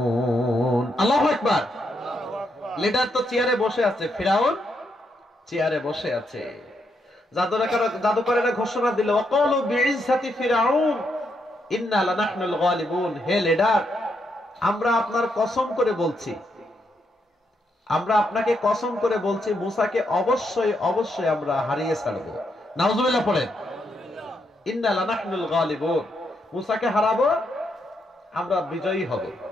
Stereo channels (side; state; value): both; normal; correlation 0.79